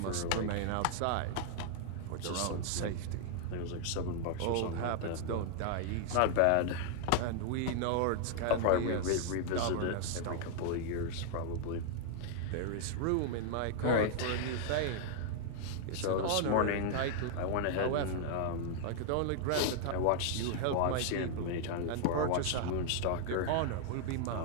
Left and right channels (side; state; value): both; different; correlation 0.00